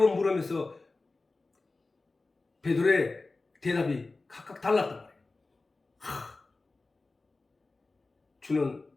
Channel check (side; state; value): right; quieter; 3.5 dB